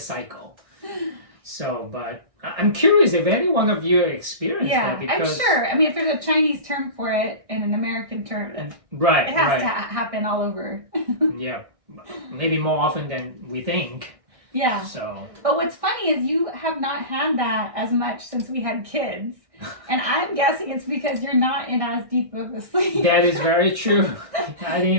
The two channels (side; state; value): left; late; 1.6 ms